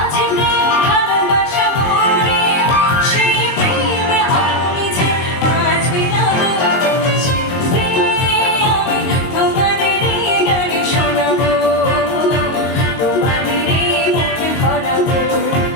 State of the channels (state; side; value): late; right; 22 ms